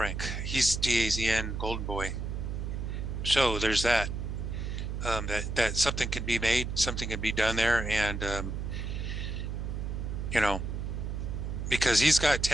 He's DAZN Golden Boy. So there's that. That something can be made, something can be done there, and because he's got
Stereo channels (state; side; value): noise; right; hum, 3 dB below the sound